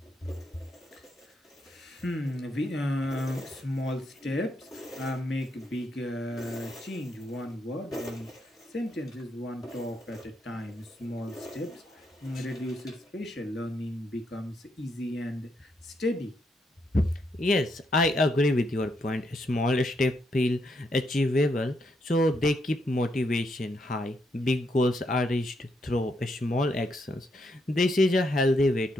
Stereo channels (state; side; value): normal; both; correlation 0.78